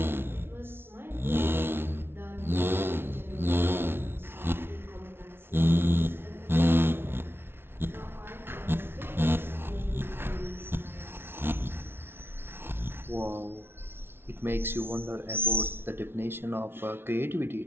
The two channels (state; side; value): late; left; 0.11 ms